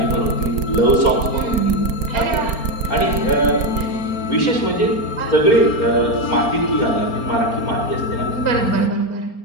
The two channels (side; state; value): right; late; 4.3 ms